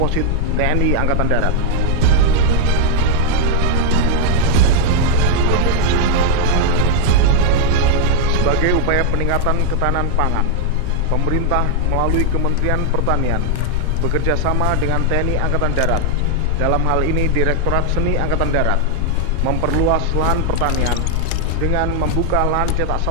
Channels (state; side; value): different; both; correlation 0.00